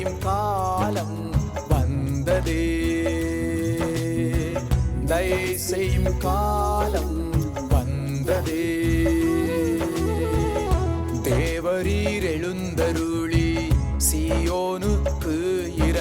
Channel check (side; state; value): both; identical; correlation 1.00